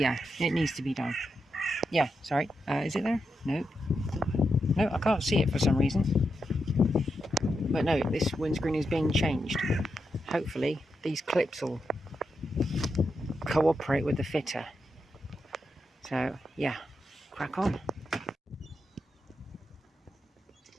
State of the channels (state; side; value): normal; both; correlation 0.85